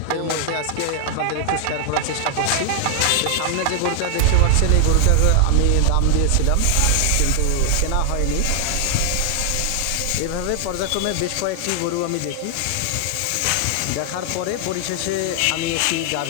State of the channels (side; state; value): both; different; correlation 0.00